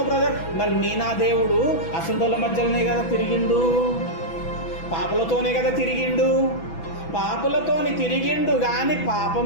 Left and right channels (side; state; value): right; late; 6.0 ms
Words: బ్రదర్. మరి నా దేవుడు అసంటోళ్ళ మధ్యలోనే కదా తిరిగిండు, పాపలతోనే కదా తిరిగిండు. పాపులతోని తిరిగిండు కానీ పాపం